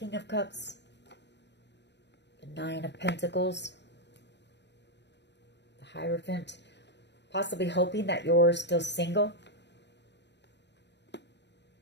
of Cups, the Nine of Pentacles, the Hierophant, possibly hoping that you're still single.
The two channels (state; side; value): late; right; 0.51 ms